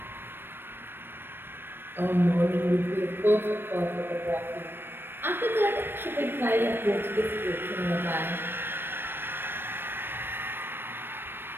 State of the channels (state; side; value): late; left; 0.10 ms